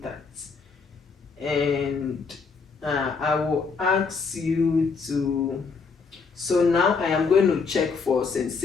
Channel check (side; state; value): right; quieter; 5.0 dB